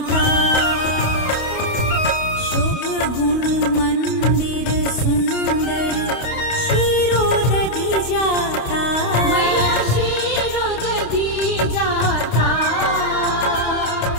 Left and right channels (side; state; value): right; late; 28 ms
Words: शुभ गुण मंदिर सुंदर, क्षीरोदधि जाता, मैया क्षीरोदधि जाता,